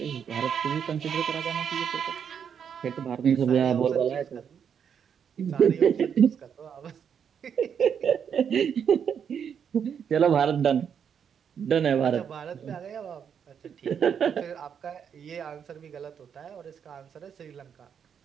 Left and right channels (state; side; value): quieter; left; 7.7 dB